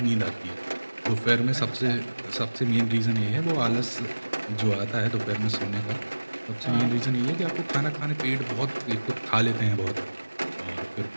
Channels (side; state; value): both; inverted; correlation -1.00